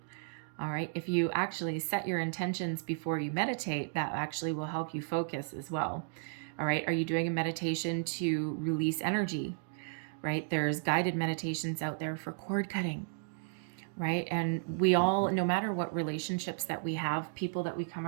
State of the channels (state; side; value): silent; left; digital silence